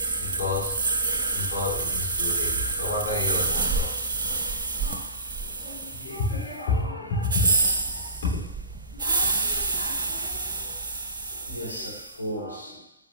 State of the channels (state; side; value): inverted; both; correlation -0.37